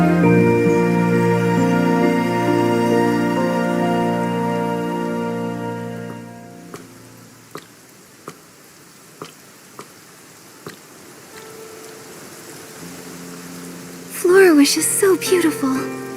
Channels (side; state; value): both; identical; correlation 1.00